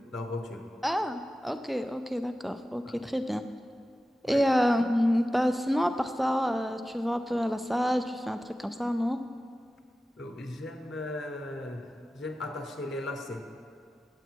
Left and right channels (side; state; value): both; normal; correlation 0.94